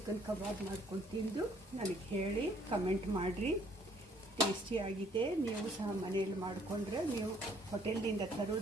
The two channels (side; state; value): both; normal; correlation 0.63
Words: ಕಬಾಬ್ ಮಾಡ್ಕೊಂಡು ತಿಂದು ನನಗೆ ಹೇಳಿ ಕಮೆಂಟ್ ಮಾಡಿರಿ. ಟೇಸ್ಟಿಯಾಗಿದೆ. ನೀವು ಸಹ ಮನೆಯಲ್ಲಿ ಮಾಡಿಕೊಂಡ್ರೆ ನೀವು ಹೋಟೆಲ್ನಿಂದ